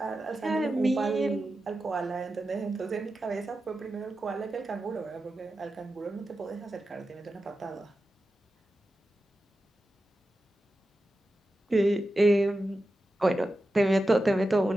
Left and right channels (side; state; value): both; normal; correlation 0.92